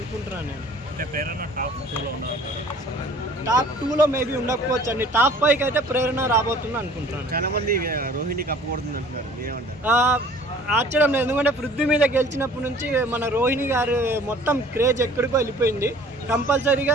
నేను. టాప్ 2లో మేబీ ఉండకపోవచ్చు అండి. టాప్ 5కి అయితే ప్రేరణ రాబోతుంది అనుకుంటున్నాను. చాలా మంది రోహిణి కప్పకూడదు అంటున్నారు, మీరేమంటారు? ఆశ్చర్యం లేదు, ఎందుకంటే పృథ్వీ మీద గెలిచినప్పటి నుంచి మన రోహిణి గారు మొత్తం క్రేజ్ ఎక్కడికో వెళ్ళిపోయింది.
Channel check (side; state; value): both; normal; correlation 0.50